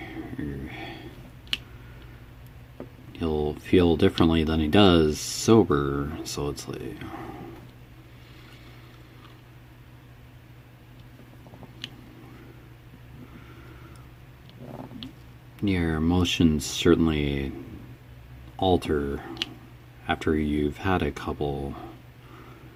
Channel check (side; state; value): both; identical; correlation 1.00